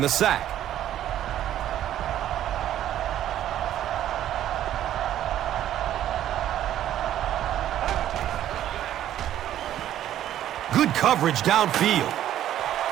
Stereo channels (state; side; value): quieter; left; 11.8 dB